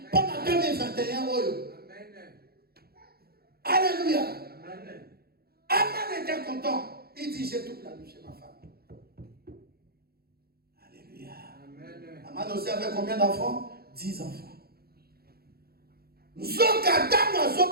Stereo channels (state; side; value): late; left; 0.45 ms